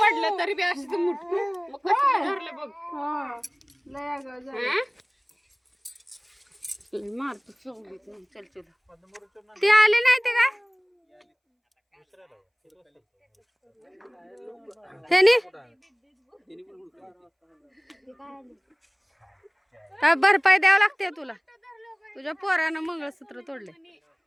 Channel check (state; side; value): identical; both; correlation 1.00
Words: तरी बी अशी धरलं बघ. मारतो चल चल. ते आले नाही ते काय त्याने काय भरपाई द्यावं लागते तुला. तुझ्या पोरानं मंगळसूत्र तोडले.